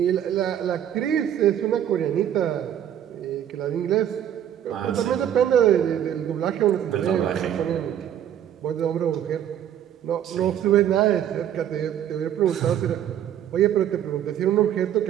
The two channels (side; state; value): left; quieter; 10.2 dB